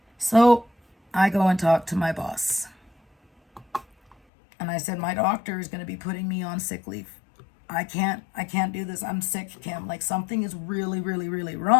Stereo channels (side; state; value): right; drops out; at 4.2 s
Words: So I go and talk to my boss. And I said, my doctor is going to be putting me on sick leave. I can't do this. I'm sick, Kim. Like, something is really, really, really